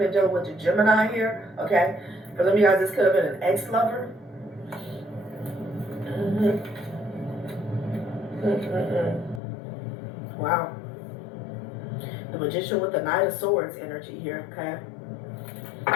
dealing with the Gemini here, okay? For some of you guys, this could have been an ex-lover. Wow. The Magician with the Knight of Swords energy here, okay?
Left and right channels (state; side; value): drops out; right; at 9.4 s